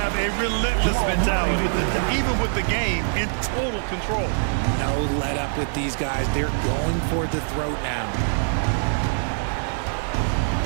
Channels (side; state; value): left; silent; digital silence